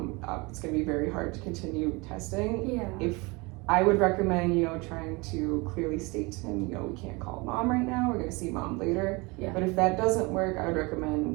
it's going to be very hard to continue testing. If I would recommend, you know, trying to clearly state to him, you know, we can't call mom right now, we're going to see mom later. But if that doesn't work, I would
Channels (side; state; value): left; quieter; 26.2 dB